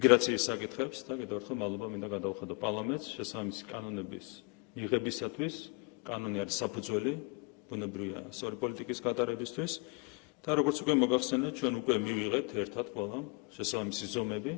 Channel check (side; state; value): right; quieter; 31.0 dB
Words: საკითხებს და კიდევ ერთხელ მადლობა მინდა გადავხადო პარლამენტს შესაბამისი კანონების მიღებისათვის. კანონი არის საფუძველი ბუნებრივია სწორი პოლიტიკის გატარებისთვის და როგორც უკვე მოგახსენეთ, ჩვენ უკვე მივიღეთ ერთად ყველა შესაბამისი ზომები,